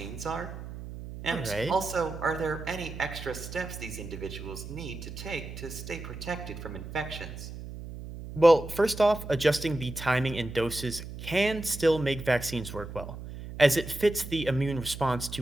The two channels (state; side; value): noise; right; hum, 10 dB below the sound